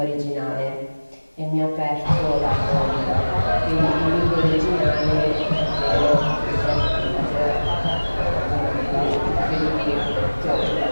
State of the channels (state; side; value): inverted; both; correlation -1.00